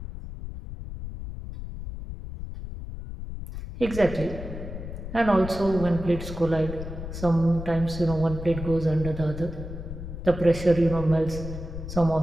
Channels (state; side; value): noise; left; rumble, 9 dB below the sound